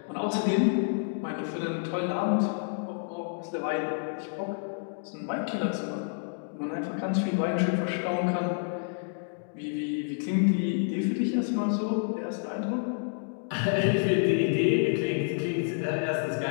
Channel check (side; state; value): right; silent; digital silence